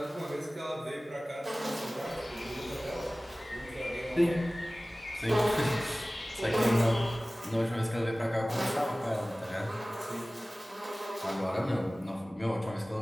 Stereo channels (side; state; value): both; normal; correlation 0.98